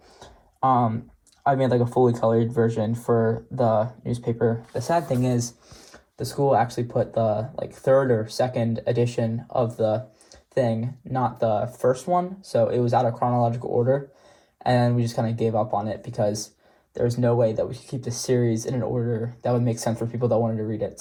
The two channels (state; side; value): identical; both; correlation 1.00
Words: I made a fully colored version for the newspaper. The sad thing is, the school actually put the like third or second edition of the thing, not the first one. So it was out of chronological order, and we just kind of gave up on it because there's no way that we could keep the series in an order that would make sense for people that wanted to read it.